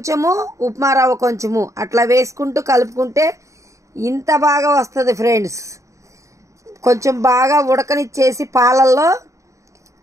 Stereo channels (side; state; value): left; late; 0.15 ms